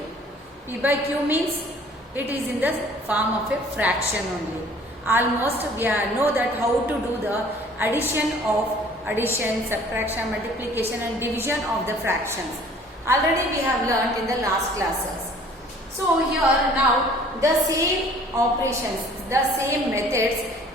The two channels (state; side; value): normal; both; correlation 0.53